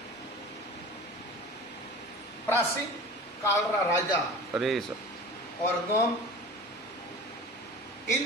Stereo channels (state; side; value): normal; both; correlation 0.38